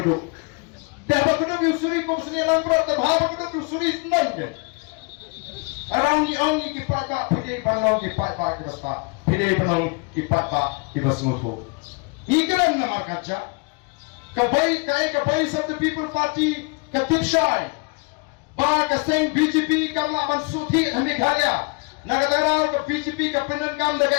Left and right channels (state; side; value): quieter; right; 31.3 dB